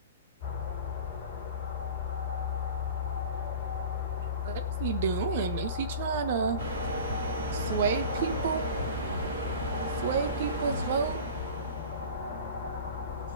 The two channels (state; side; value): inverted; both; correlation -0.36